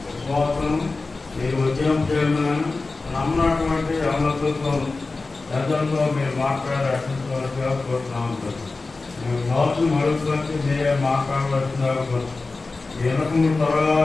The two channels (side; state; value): right; quieter; 3.7 dB